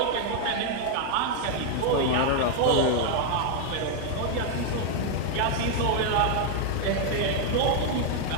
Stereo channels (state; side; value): different; both; correlation 0.00